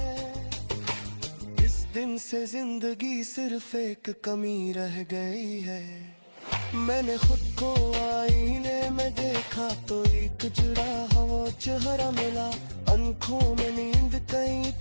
इस दिन से जिंदगी सिर्फ एक कमी रह गई है। मैंने खुद को आईने में देखा तो एक जुड़ा हुआ चेहरा मिला, आंखों में नींद कहीं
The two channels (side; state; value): both; inverted; correlation -1.00